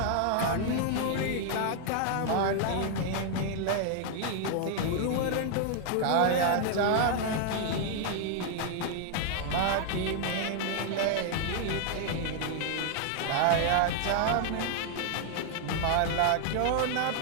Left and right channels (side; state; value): both; different; correlation 0.00